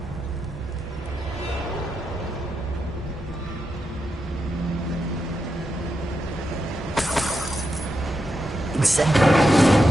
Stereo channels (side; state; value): both; normal; correlation 0.86